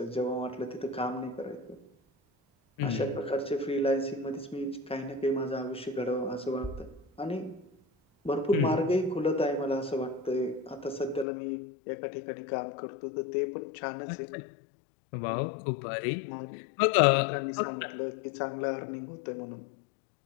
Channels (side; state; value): right; drops out; at 11.2 s